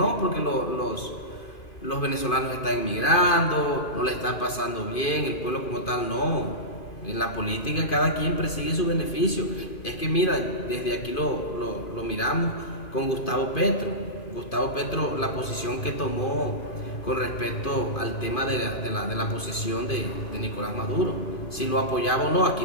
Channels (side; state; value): right; late; 2.5 ms